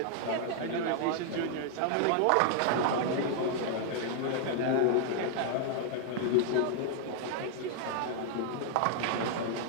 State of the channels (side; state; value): both; different; correlation -0.01